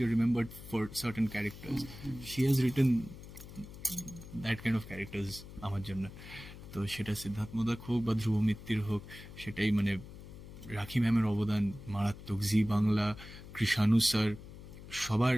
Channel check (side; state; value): left; noise; hum, 15 dB below the sound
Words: you remembered for certain characters. She has written that kind of characters আমার জন্য। তো সেটা সিদ্ধার্থ মোদক হোক বা ধ্রুব মিত্তির হোক, সেটাই মানে রাখি ম্যামের অবদান মারাত্মক। জি বাংলা, কৃষাণু স্যার, সবার,